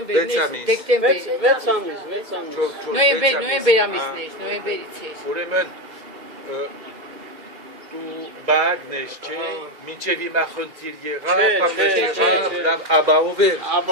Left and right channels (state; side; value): late; left; 2.0 ms